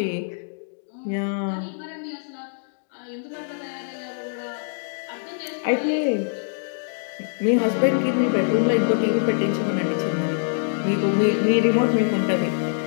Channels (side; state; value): right; silent; digital silence